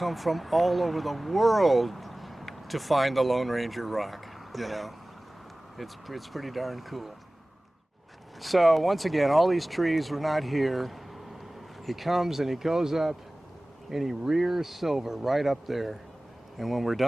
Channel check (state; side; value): normal; both; correlation 0.98